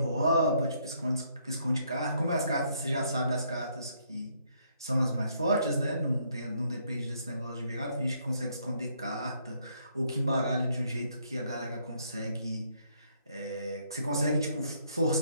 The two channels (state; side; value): inverted; both; correlation -0.70